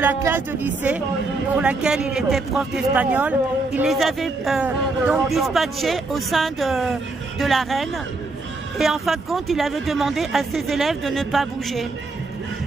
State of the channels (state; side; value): quieter; left; 3.4 dB